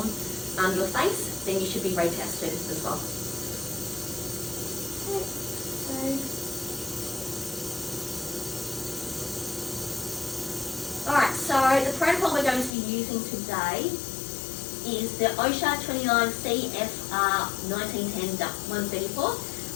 your face, then you should be retested as well. Alright, so the protocol we're going to be using today is the OSHA 29 CFR 1910-134,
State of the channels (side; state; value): right; drops out; at 12.7 s